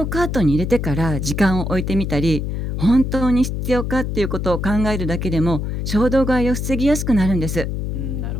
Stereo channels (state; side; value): noise; left; hum, 3 dB below the sound